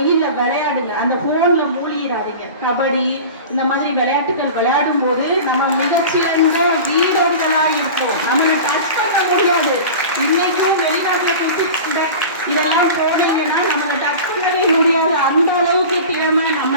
விளையாடுங்க. அந்த போன்ல மூழ்கிடாதீங்க. கபடி இந்த மாதிரி விளையாட்டுகள் விளையாடும் போது நம்ம மிகச்சிறந்த வீரர்களா இருப்போம். நம்மளை டச் பண்ண முடியாது. இன்னைக்கும் வெளிநாட்டுல கொடுத்து இதெல்லாம் போனீங்கன்னா நம்மளை டச் பண்ணவே முடியாது. அந்த அளவுக்கு திறமை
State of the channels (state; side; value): inverted; both; correlation -0.35